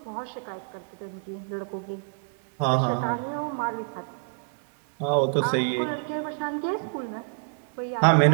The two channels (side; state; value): left; silent; digital silence